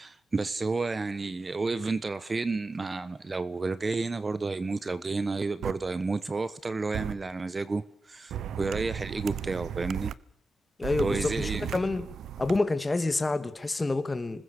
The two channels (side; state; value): both; normal; correlation 0.91